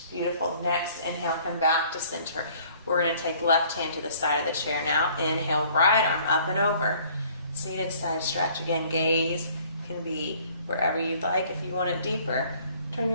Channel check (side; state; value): both; inverted; correlation -0.56